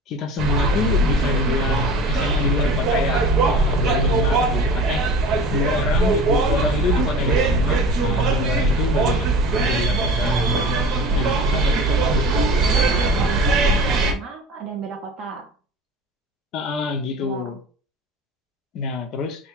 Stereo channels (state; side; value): normal; both; correlation 0.38